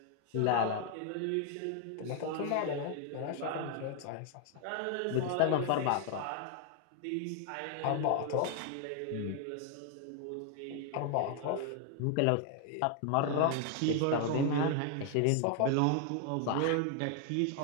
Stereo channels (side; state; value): both; different; correlation 0.00